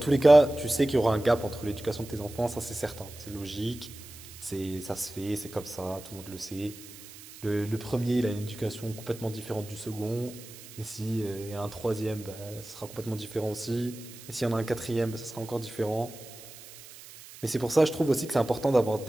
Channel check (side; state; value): right; noise; hiss, 17 dB below the sound